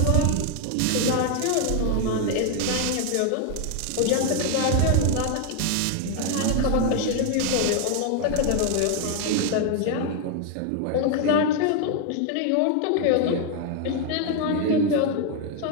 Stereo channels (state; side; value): different; both; correlation 0.00